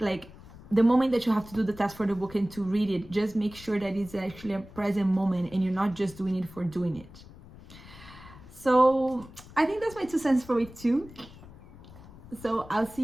the moment that you have to do the task for the book and to read it, just make sure that it's actually a present moment and you're not just doing it for doing it. So I think that's my 2 cents for week 2. So I'll see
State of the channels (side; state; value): left; noise; rumble, 19 dB below the sound